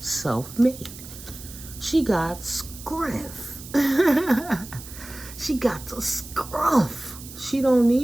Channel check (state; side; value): noise; right; hiss, 15 dB below the sound